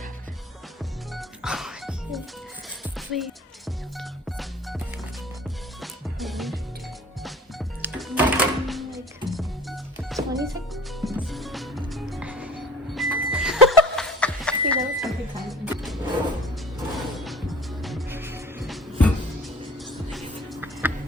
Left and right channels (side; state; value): both; normal; correlation 0.46